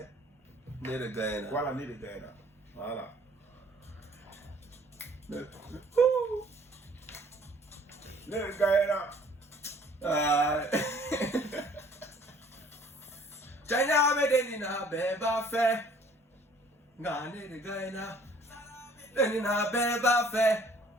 Né de Gaïna. Voilà, Né de Gaïna. Voilà. Né de Gaïna. China me denina beba fe, ngane de Gaïna, denina beba fe,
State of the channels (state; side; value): normal; both; correlation 0.56